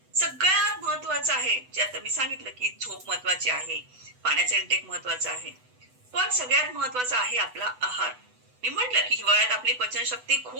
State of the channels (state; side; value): late; left; 8.0 ms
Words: सगळ्यात महत्वाचं आहे जे आता मी सांगितलं की झोप महत्वाची आहे, पाण्याचा इंटेक महत्वाचा आहे, पण सगळ्यात महत्वाचा आहे आपला आहार. मी म्हटलं की हिवाळ्यात आपली पचनशक्ती